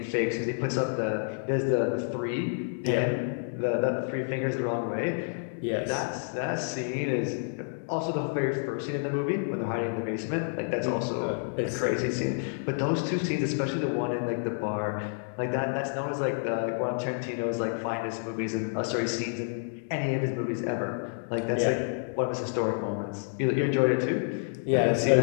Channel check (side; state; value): right; silent; digital silence